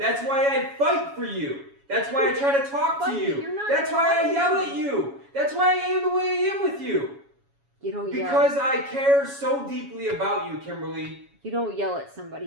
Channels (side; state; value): left; late; 7.2 ms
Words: why I fight for you. That's why I try to talk to But you. you're not That's why I fighting. yell at you. That's why I am the way I am with you. You don't yell. Because I care so deeply about you, Kimberly. You don't yell at